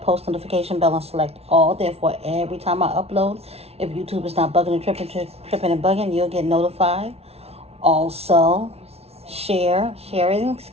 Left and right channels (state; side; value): late; left; 0.30 ms